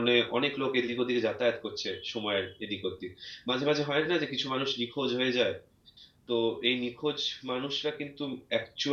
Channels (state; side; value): identical; both; correlation 1.00